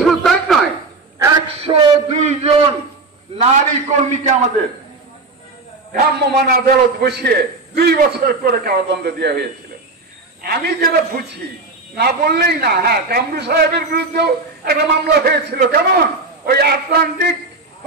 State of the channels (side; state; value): left; quieter; 3.5 dB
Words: শুধু তাই নয়, 102 জন নারী কর্মীকে আমাদের ভ্রাম্যমাণ আদালত বসিয়ে 2 বছর করে কারাদণ্ড দেওয়া হয়েছিল। আমি যেটা বুঝি, না বললেই না, হ্যাঁ, কামরু সাহেবের বিরুদ্ধেও একটা মামলা হয়েছিল। কেমন? ওই আটলান্টিক